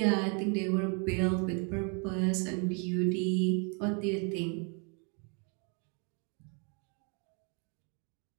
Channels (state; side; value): quieter; left; 36.3 dB